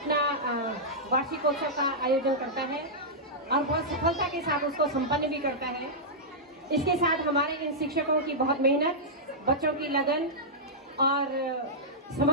वार्षिकोत्सव का आयोजन करता है और बहुत सफलता के साथ उसको संपन्न भी करता है। इसके साथ हमारे इन शिक्षकों की बहुत मेहनत, बच्चों की लगन और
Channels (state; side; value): normal; both; correlation -0.11